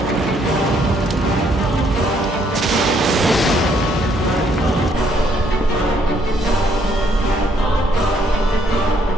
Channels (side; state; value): both; normal; correlation 0.69